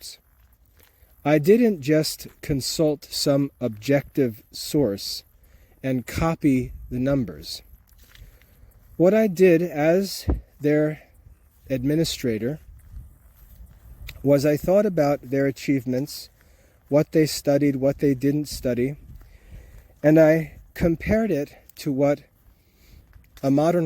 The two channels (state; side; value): identical; both; correlation 1.00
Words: I didn't just consult some objective source and copy the numbers. What I did as their administrator was I thought about their achievements, what they studied, what they didn't study, and I compared it to what a